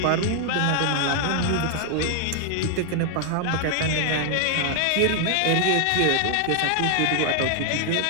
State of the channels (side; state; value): both; different; correlation 0.00